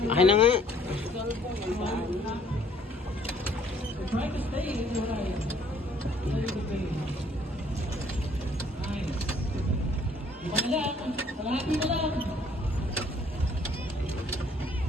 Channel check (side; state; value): both; normal; correlation 0.60